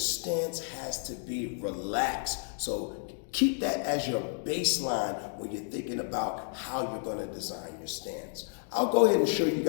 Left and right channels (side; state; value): right; silent; 57 dB below the other